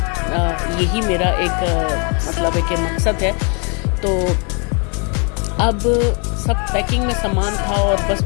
यही मेरा एक मतलब है कि मकसद है। तो अब सब पैकिंग में सामान था और बस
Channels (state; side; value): quieter; right; 35.6 dB